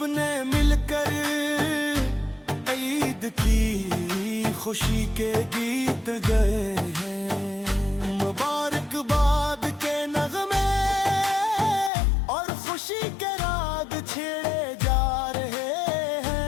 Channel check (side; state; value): right; drops out; at 11.9 s